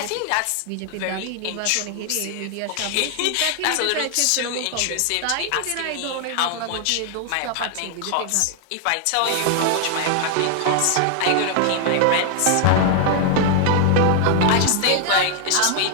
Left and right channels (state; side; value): different; both; correlation 0.00